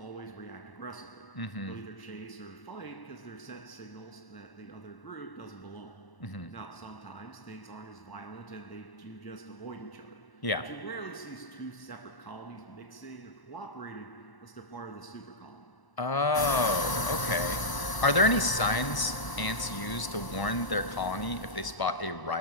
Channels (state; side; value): late; right; 1.0 ms